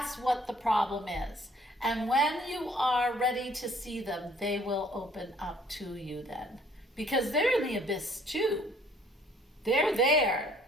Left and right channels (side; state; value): both; normal; correlation 0.59